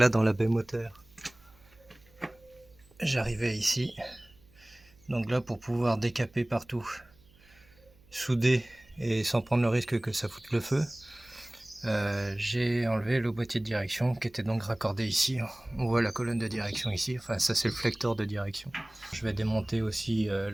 dans la baie moteur, j'arrivais ici, donc là pour pouvoir décaper partout, souder et sans prendre le risque que ça foute le feu, j'ai enlevé le boîtier de direction qui était donc raccordé ici. On voit la colonne de direction ici, enfin ça c'est le flecteur de direction. Je vais démonter aussi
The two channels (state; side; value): noise; right; hum, 28 dB below the sound